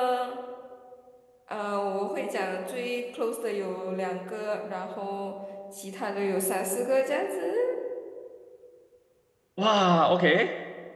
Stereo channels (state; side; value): identical; both; correlation 1.00